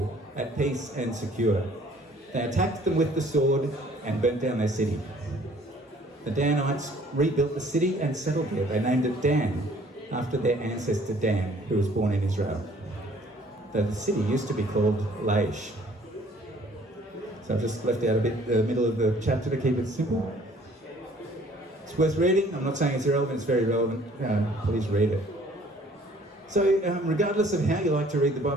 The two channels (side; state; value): both; normal; correlation 0.57